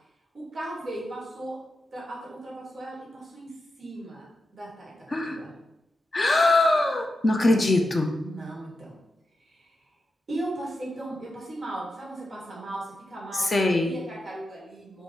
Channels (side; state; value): both; normal; correlation 0.89